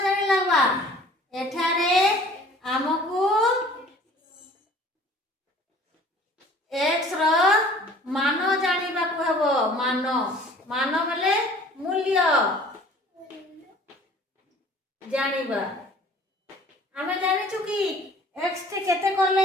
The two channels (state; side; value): normal; both; correlation 0.50